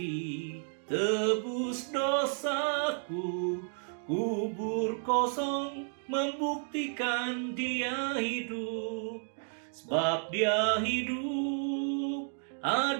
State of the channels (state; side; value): silent; left; 56 dB below the other